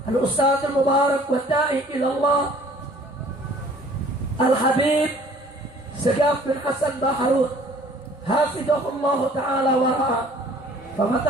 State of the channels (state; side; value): normal; both; correlation 0.53